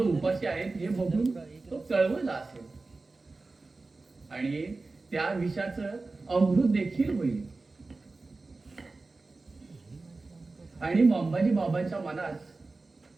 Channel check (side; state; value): left; quieter; 3.6 dB